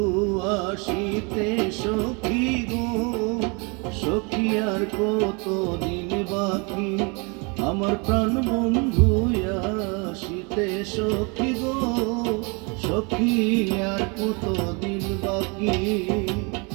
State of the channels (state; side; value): quieter; left; 31.6 dB